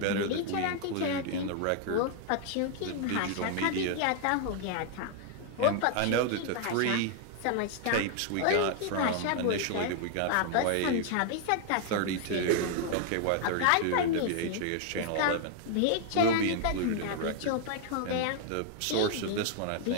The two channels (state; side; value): different; both; correlation 0.00